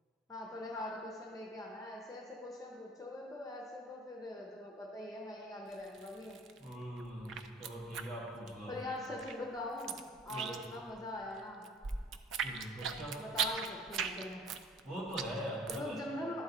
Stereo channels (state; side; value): normal; both; correlation 0.50